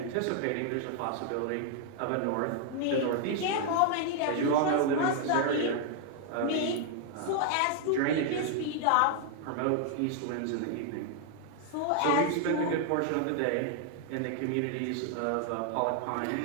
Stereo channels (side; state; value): both; different; correlation 0.00